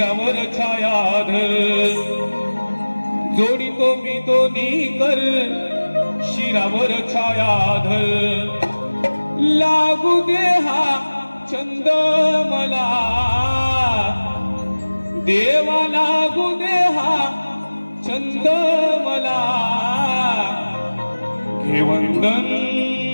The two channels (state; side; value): inverted; both; correlation -1.00